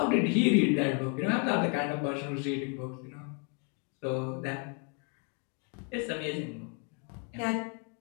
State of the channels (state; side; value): quieter; right; 37.0 dB